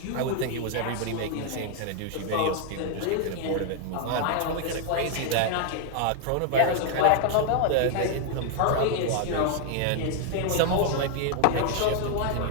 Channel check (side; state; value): both; different; correlation 0.00